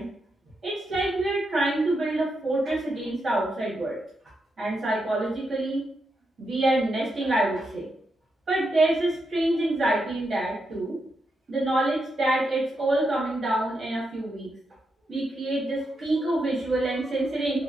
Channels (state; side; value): normal; both; correlation 0.84